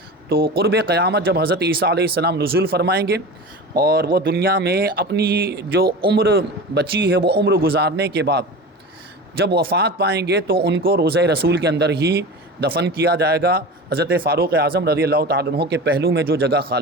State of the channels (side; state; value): both; normal; correlation 0.31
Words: تو قرب قیامت جب حضرت عیسیٰ علیہ السلام نزول فرمائیں گے، اور وہ دنیا میں اپنی جو عمر بچی ہے وہ عمر گزارنے کے بعد جب وفات پائیں گے، تو ان کو روضہ رسول کے اندر ہی دفن کیا جائے گا، حضرت فاروق اعظم رضی اللہ تعالیٰ عنہ کے پہلو میں جو جگہ